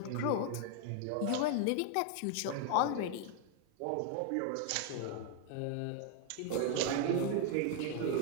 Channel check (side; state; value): both; different; correlation 0.00